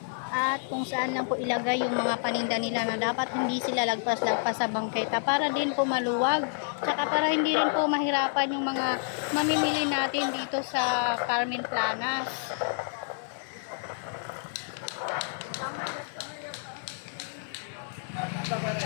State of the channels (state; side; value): silent; right; digital silence